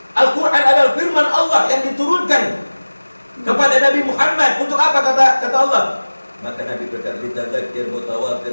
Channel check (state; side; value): inverted; both; correlation -1.00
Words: Al-Quran adalah firman Allah yang diturunkan kepada Nabi Muhammad. Untuk apa kata Allah? Maka Nabi berkata, litadzakir,